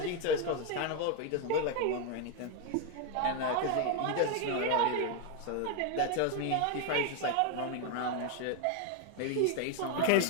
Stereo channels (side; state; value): both; different; correlation 0.01